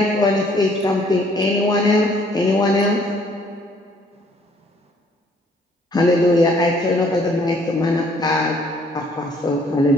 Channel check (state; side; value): normal; both; correlation 0.62